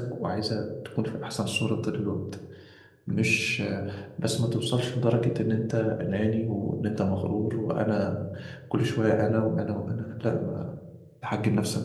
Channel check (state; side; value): identical; both; correlation 1.00